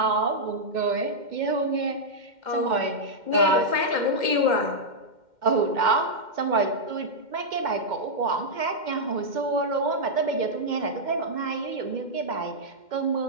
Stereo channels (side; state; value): left; late; 2.1 ms